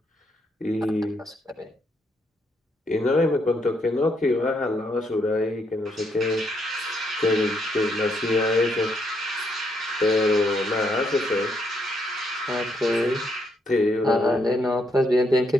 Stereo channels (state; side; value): normal; both; correlation 0.75